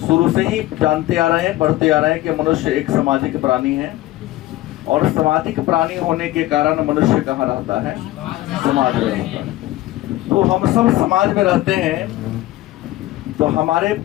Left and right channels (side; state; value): right; quieter; 16.5 dB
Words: से ही जानते आ रहे हैं, पढ़ते आ रहे हैं कि मनुष्य एक सामाजिक प्राणी है, और सामाजिक प्राणी होने के कारण मनुष्य कहाँ रहता है, समाज में रहता है। तो हम सब समाज में रहते हैं, तो हमारे